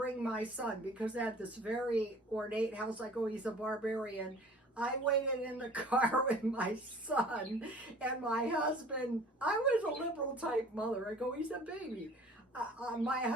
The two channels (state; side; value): normal; both; correlation 0.47